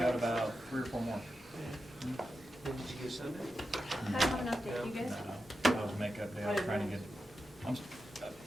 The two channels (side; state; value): both; normal; correlation 0.90